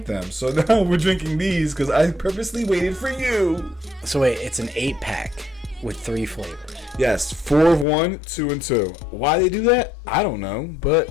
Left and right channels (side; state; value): right; drops out; at 7.9 s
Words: them. So now we're drinking these because I purposely waited for you. So wait, it's an 8-pack with 3 flavors. Yes, 4 of 1, 2 and 2. Why they do that? I don't know, but